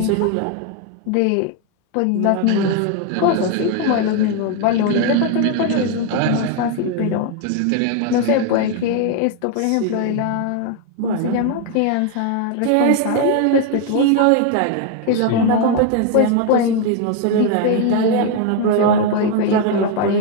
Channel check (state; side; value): different; both; correlation 0.01